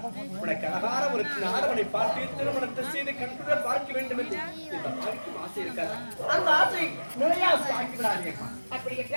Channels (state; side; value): inverted; both; correlation -1.00